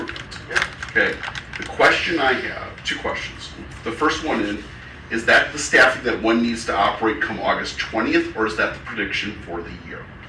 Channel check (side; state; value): both; identical; correlation 1.00